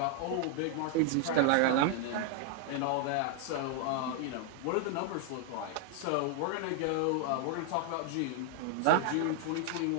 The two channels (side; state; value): both; different; correlation 0.00